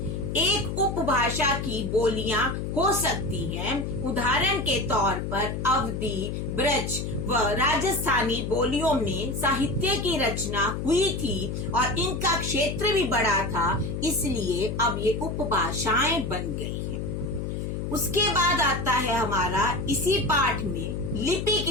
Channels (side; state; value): left; noise; hum, 3 dB below the sound